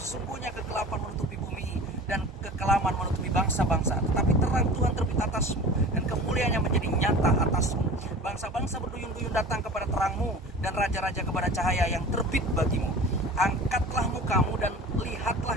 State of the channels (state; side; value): normal; both; correlation 0.39